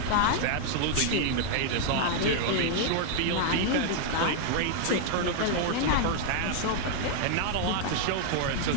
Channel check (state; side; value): different; both; correlation 0.00